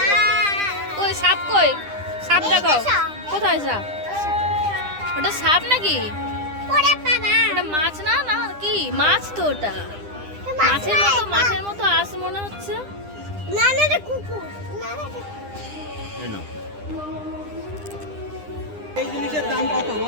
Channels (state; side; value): late; left; 9.9 ms